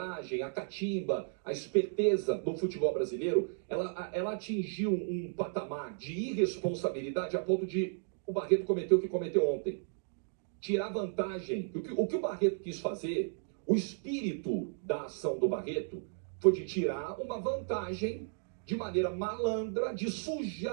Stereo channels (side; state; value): left; silent; digital silence